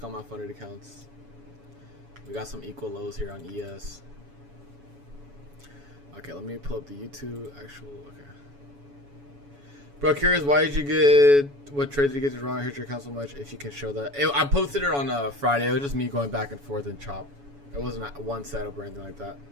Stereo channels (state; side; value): late; left; 7.1 ms